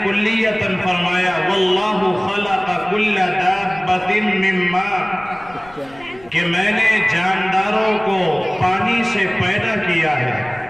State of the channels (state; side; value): noise; left; rumble, 24 dB below the sound